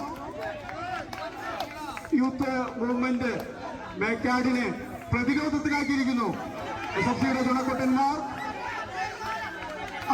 Youth movement മേക്കാടിനെ പ്രതിരോധത്തിലാക്കിയിരിക്കുന്നു. SFCയുടെ ചുണക്കുട്ടന്മാർ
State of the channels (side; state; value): both; identical; correlation 1.00